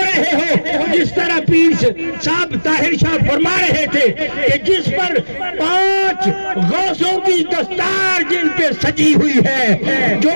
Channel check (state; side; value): inverted; both; correlation -1.00